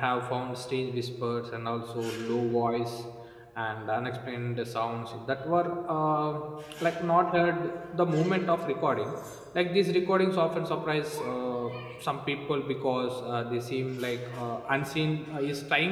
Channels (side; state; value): both; identical; correlation 1.00